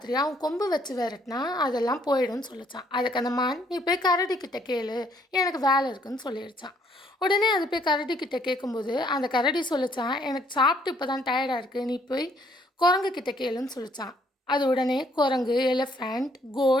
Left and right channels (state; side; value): normal; both; correlation 0.66